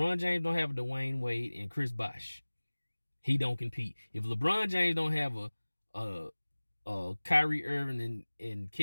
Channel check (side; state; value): both; inverted; correlation -1.00